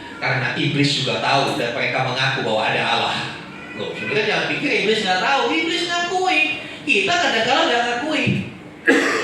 Karena iblis juga tahu dan mereka mengaku bahwa ada Allah. Loh, saudara jangan pikir iblis nggak tahu. Iblis ngakui. Kita kadang-kadang nggak ngakui.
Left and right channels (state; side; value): identical; both; correlation 1.00